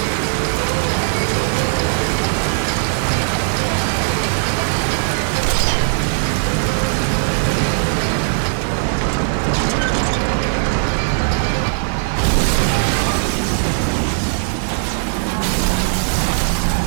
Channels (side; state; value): left; silent; digital silence